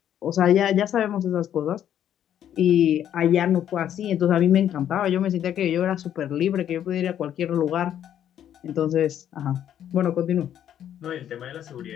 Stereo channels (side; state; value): right; quieter; 10.3 dB